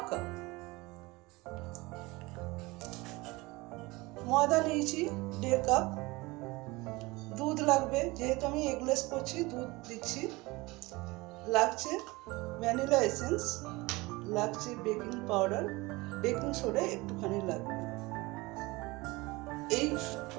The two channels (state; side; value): quieter; left; 22.7 dB